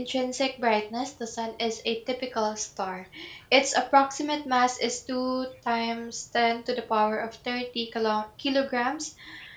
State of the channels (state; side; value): identical; both; correlation 1.00